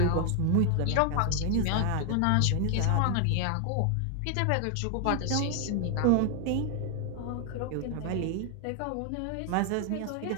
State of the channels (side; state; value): both; different; correlation 0.00